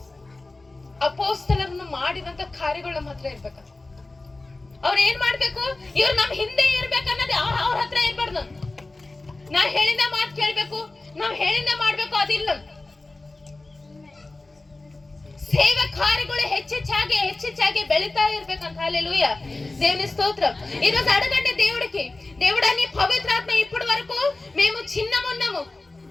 ಅಪೋಸ್ತಲರನ್ನು ಮಾಡಿದಂತ ಕಾರ್ಯಗಳು ನಮ್ಮ ಹತ್ರ ಇರ್ಬೇಕ. ಅವ್ರ ಏನ್ ಮಾಡ್ಬೇಕು, ಇವ್ರು ನಮ್ ಹಿಂದೆ ಇರ್ಬೇಕನ್ನೋದು ಅವ್ರ ಹತ್ರ ಇರ್ಬಾರ್ದು. ನಾ ಹೇಳಿದ ಮಾತು ಕೇಳ್ಬೇಕು, ನಾವ್ ಹೇಳಿದ ಮಾಡ್ಬೇಕು, ಅದಿಲ್ಲ. ಸೇವೆ ಕಾರ್ಯಗಳು ಹೆಚ್ಚೆಚ್ಚಾಗಿ ಬೆಳಿತಾ ఇర్ಬೇకంట. హల్లెలూయా, దేవుని స్తోత్రం. ఈరోజు అడగండి దేవుడికి, దేవుడా నీ పవిత్రాత్మ ఇప్పటి వరకు మేము చిన్నమున్నాము,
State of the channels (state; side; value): quieter; right; 3.1 dB